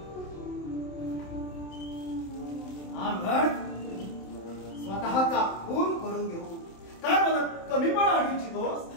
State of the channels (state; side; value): late; right; 27 ms